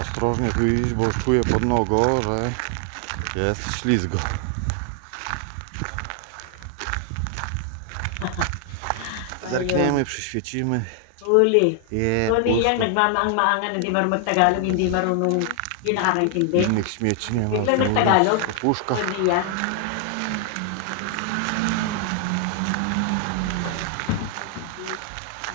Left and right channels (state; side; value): different; both; correlation 0.00